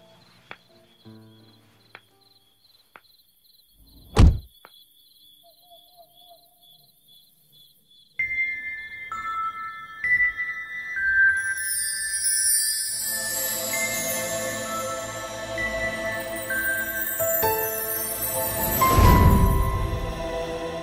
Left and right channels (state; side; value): identical; both; correlation 1.00